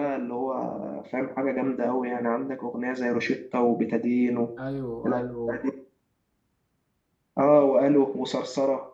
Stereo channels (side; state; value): both; identical; correlation 1.00